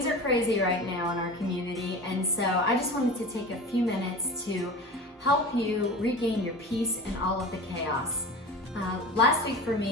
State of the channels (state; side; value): normal; both; correlation 0.34